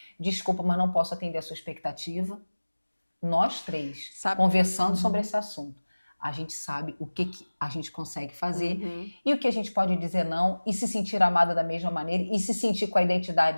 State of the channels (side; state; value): both; inverted; correlation -1.00